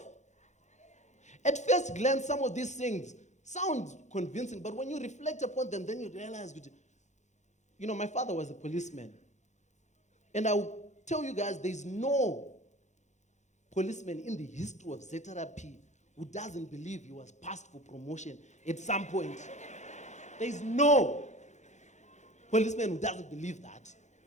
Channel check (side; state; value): right; late; 0.34 ms